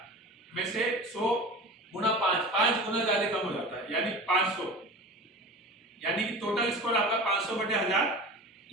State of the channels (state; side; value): normal; both; correlation 0.34